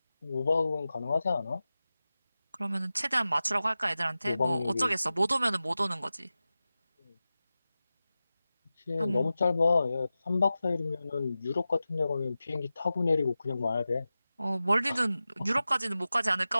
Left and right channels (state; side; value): inverted; both; correlation -0.94